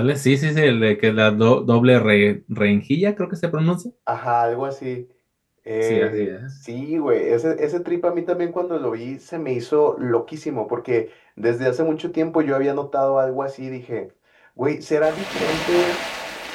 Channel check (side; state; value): both; identical; correlation 1.00